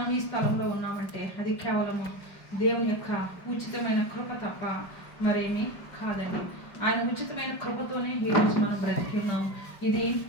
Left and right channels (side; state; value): right; late; 5.4 ms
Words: ఈ స్థలంలో ఉన్నామంటే అది కేవలము దేవుని యొక్క ఉచితమైన కృప తప్ప మరేమీ కాదండి. ఆయన ఉచితమైన కృపతోనే ఈరోజు మనం బ్రతికి ఉన్నాము. ఇది